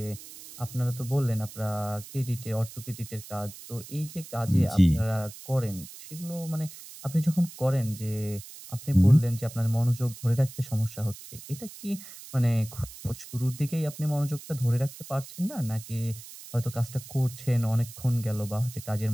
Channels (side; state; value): right; noise; hiss, 15 dB below the sound